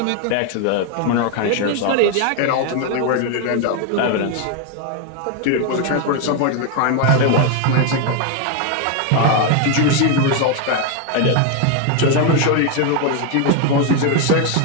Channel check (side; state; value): both; different; correlation 0.01